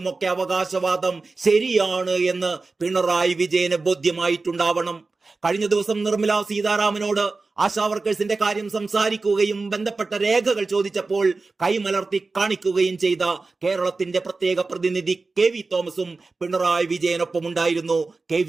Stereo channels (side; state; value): left; quieter; 3.8 dB